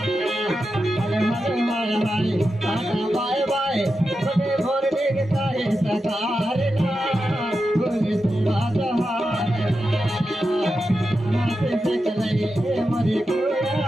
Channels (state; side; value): normal; both; correlation 0.89